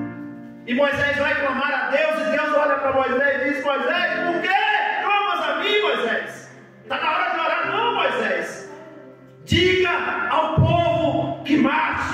E Moisés vai clamar a Deus, e Deus olha para Moisés e diz: Moisés, por que clamas a mim, Moisés? Está na hora de orar. Não, Moisés, diga ao povo que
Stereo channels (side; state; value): both; identical; correlation 1.00